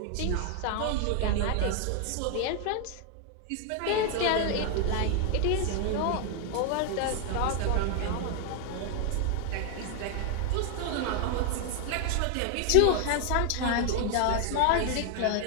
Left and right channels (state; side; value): different; both; correlation 0.00